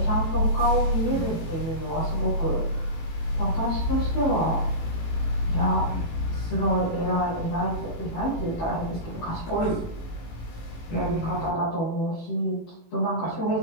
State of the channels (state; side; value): late; right; 18 ms